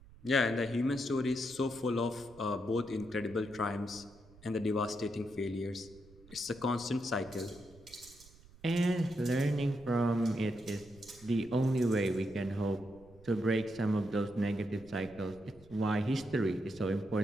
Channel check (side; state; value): right; noise; rumble, 23 dB below the sound